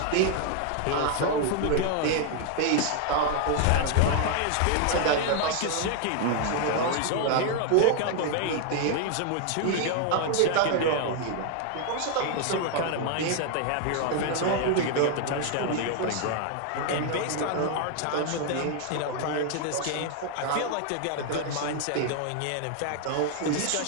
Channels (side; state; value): both; different; correlation 0.00